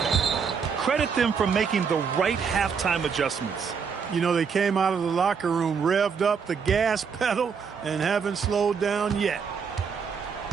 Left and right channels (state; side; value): quieter; left; 6.2 dB